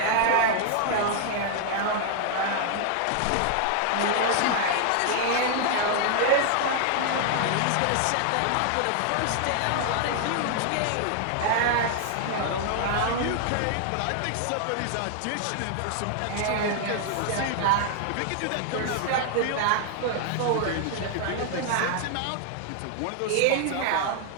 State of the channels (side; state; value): both; different; correlation 0.00